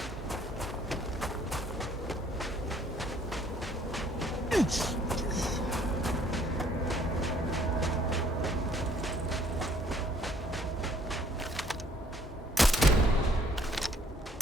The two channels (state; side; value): normal; both; correlation 0.62